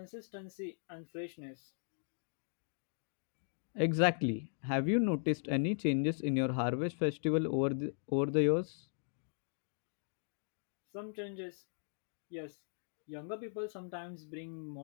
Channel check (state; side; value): silent; right; digital silence